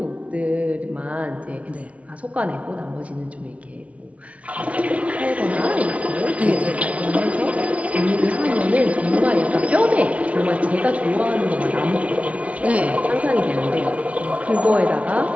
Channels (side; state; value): left; late; 0.065 ms